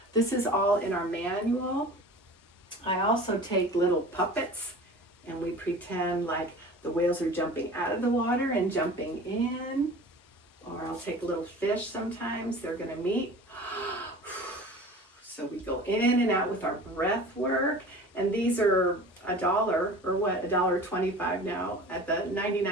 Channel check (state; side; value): normal; both; correlation 0.40